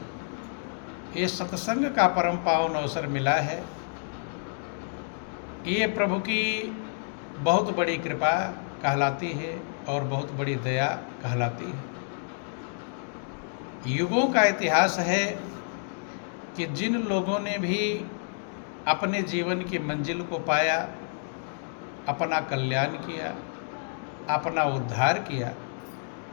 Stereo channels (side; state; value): right; silent; digital silence